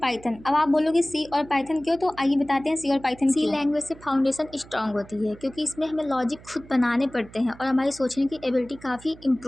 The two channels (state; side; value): noise; right; hum, 21 dB below the sound